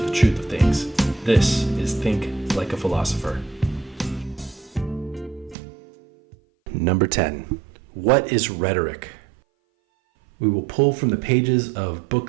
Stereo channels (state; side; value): drops out; left; at 5.6 s